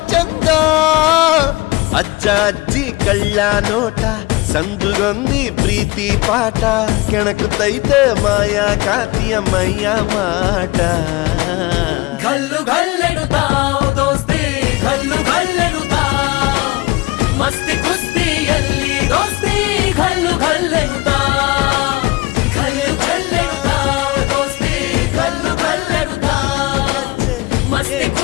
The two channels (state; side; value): quieter; right; 22.1 dB